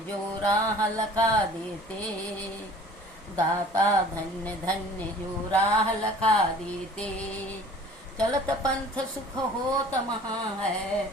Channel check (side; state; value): both; normal; correlation 0.47